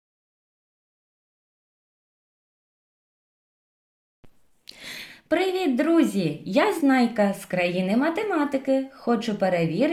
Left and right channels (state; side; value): identical; both; correlation 1.00